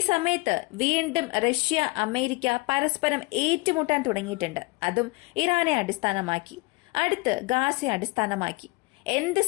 സമയത്ത് വീണ്ടും റഷ്യ അമേരിക്ക പരസ്പരം ഏറ്റുമുട്ടാൻ തുടങ്ങിയിട്ടുണ്ട്. അതും ഇറാനെ അടിസ്ഥാനമാക്കി, അടുത്ത് ഗാസയെ അടിസ്ഥാനമാക്കി. എന്ത്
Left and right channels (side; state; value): right; quieter; 26.0 dB